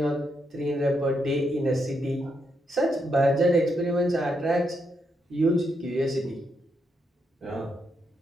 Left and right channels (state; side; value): normal; both; correlation 0.80